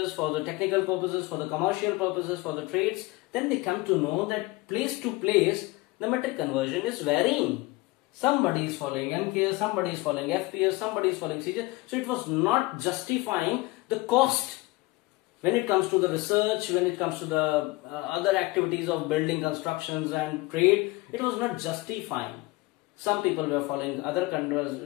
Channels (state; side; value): quieter; right; 21.9 dB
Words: for the technical purposes, for the commercial purposes, for the trades, then they come to know that place to place the metric conversion is varying. Somebody is following MKS, somebody is following FPS, somebody is following CGS. So it was not justifying the cost when it comes to the research, when it comes to the other activities of building, constructions and trade. It was not justifying. Some people were following other